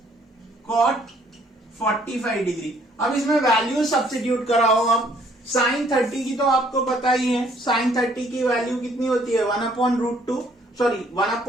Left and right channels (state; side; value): normal; both; correlation 0.63